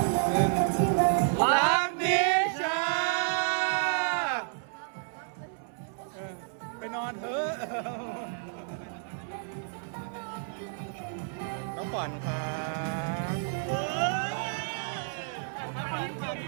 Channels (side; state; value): left; silent; digital silence